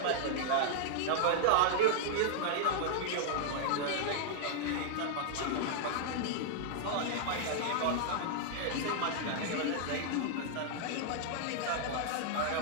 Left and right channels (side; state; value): both; different; correlation -0.01